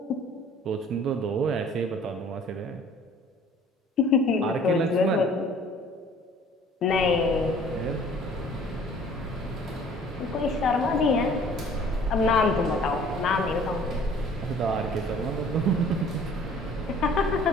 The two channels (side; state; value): both; normal; correlation 0.52